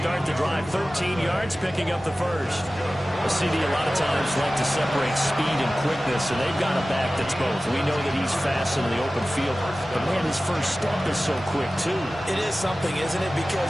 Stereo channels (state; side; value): normal; both; correlation 0.96